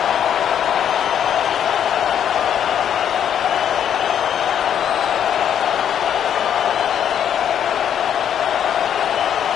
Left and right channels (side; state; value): right; quieter; 9.3 dB